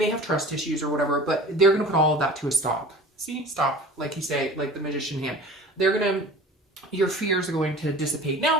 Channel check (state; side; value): normal; both; correlation 0.41